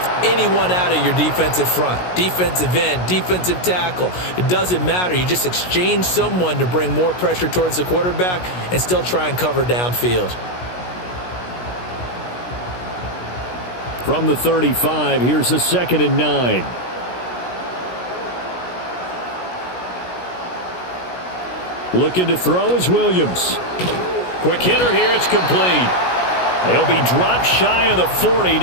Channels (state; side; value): late; right; 16 ms